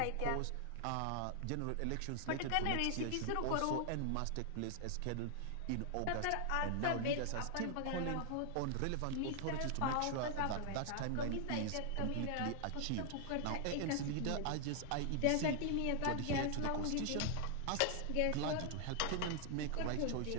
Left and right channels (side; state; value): both; different; correlation 0.00